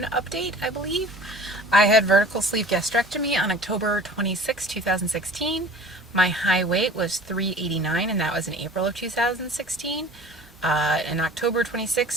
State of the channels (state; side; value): normal; both; correlation 0.44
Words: update, I believe. I had vertical sleeve gastrectomy on October 26, 2016. My high weight was 389, and that was in April of 2016. In October